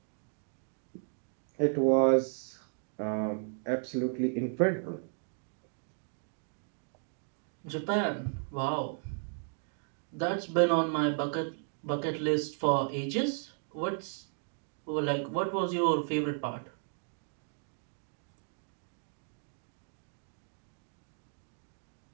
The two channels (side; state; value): left; silent; 55 dB below the other